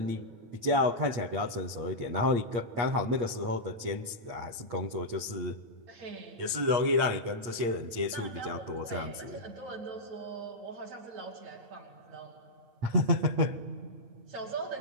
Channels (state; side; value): late; left; 8.5 ms